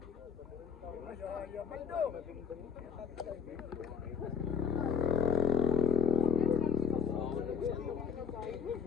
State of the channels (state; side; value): quieter; right; 6.8 dB